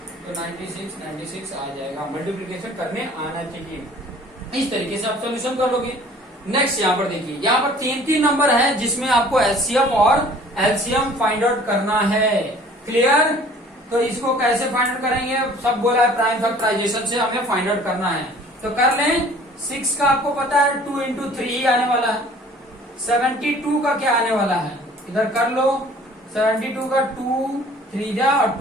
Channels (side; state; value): both; normal; correlation 0.51